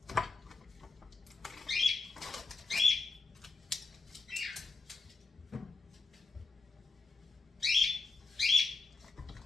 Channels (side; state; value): right; quieter; 3.8 dB